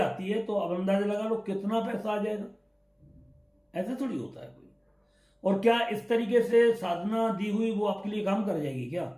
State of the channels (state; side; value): identical; both; correlation 1.00